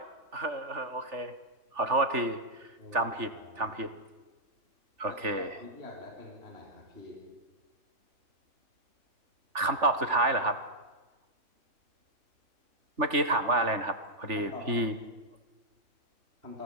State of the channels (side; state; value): left; late; 3.4 ms